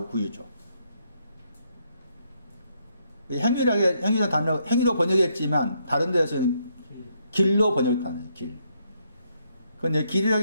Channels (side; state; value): both; inverted; correlation -0.75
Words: 구유죠. 행위라는 단어 행위로 번역했지만 다른 데서는 길로 번역하는 길. 그런데